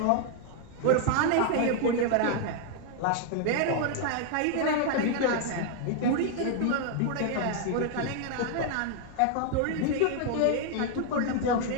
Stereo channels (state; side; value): different; both; correlation 0.00